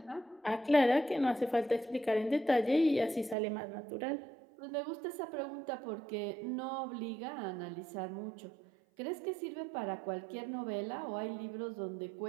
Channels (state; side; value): drops out; left; at 3.4 s